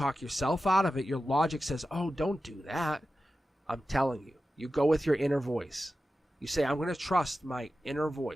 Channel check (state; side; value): normal; both; correlation 0.93